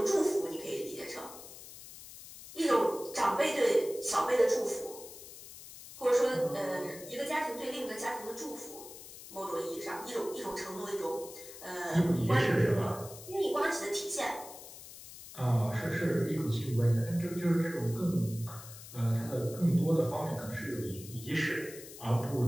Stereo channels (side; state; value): left; noise; hiss, 15 dB below the sound